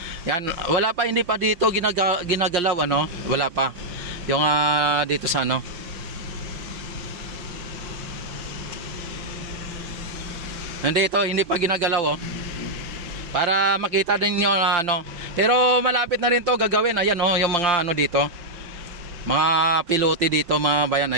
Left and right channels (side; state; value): left; late; 5.6 ms